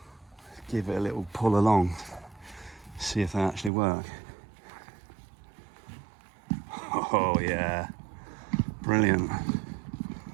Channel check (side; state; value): left; drops out; at 3.7 s